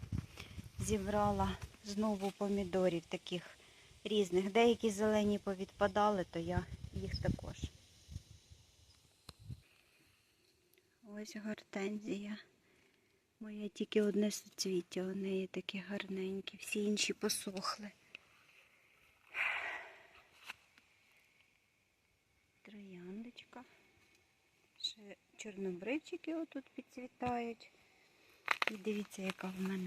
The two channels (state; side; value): identical; both; correlation 1.00